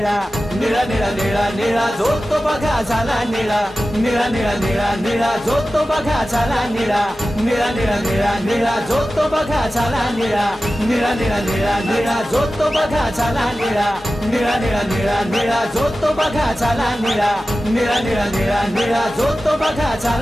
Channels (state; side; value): normal; both; correlation 0.95